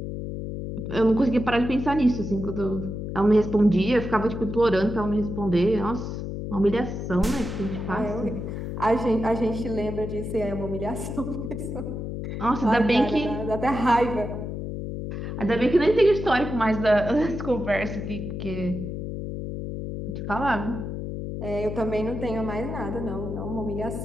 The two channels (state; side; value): noise; left; hum, 5 dB below the sound